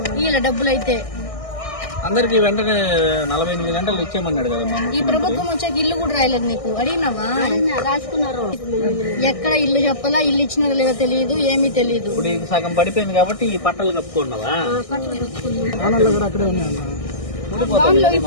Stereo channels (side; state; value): right; late; 1.6 ms